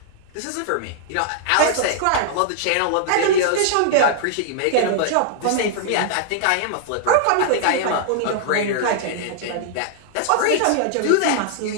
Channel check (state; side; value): different; both; correlation -0.01